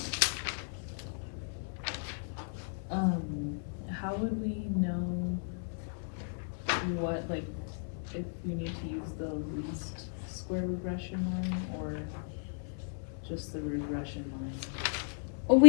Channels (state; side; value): silent; right; 54 dB below the other